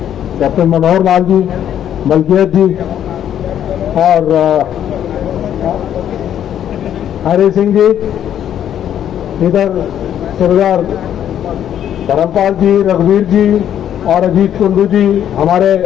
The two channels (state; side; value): quieter; right; 10.2 dB